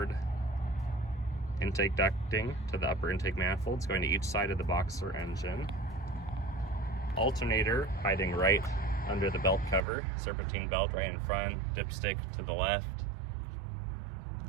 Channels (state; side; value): drops out; left; at 9.8 s